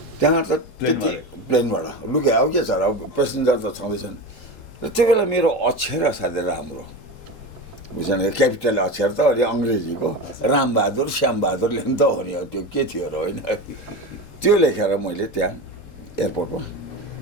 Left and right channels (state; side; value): late; right; 3.8 ms